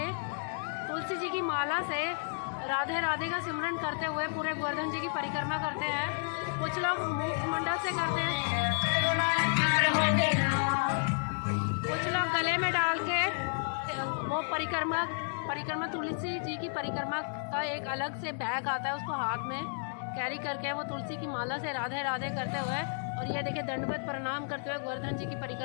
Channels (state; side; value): silent; right; digital silence